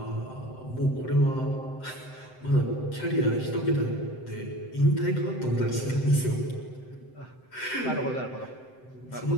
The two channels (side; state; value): right; late; 7.8 ms